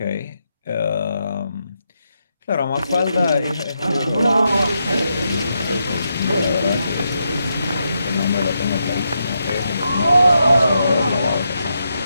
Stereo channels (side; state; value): both; inverted; correlation -0.83